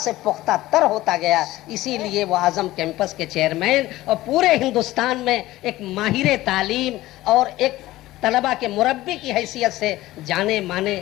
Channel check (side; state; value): right; quieter; 16.8 dB